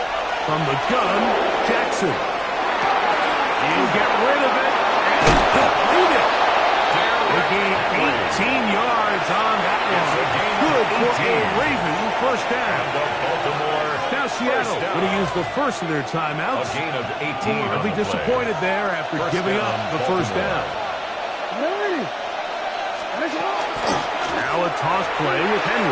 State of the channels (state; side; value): identical; both; correlation 1.00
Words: From the gun, Jackson. He'll get rid of it and complete it. They gained 18 yards on that one. Good for a Raven 1st down. Now Seattle going to use the first of their timeouts. A gain of 18. They'll be disappointed there after giving up the 1st down. Now a toss play with